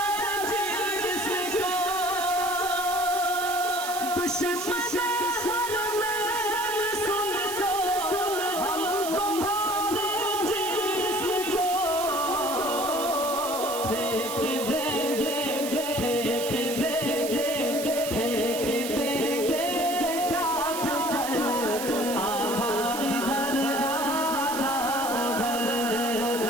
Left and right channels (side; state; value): right; noise; hiss, 7 dB below the sound